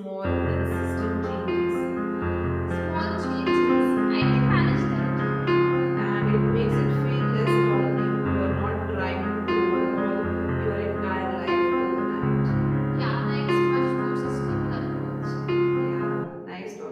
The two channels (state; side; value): identical; both; correlation 1.00